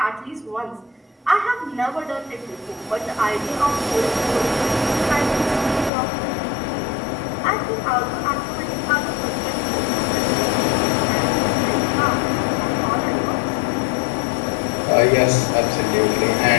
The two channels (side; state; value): right; drops out; at 5.9 s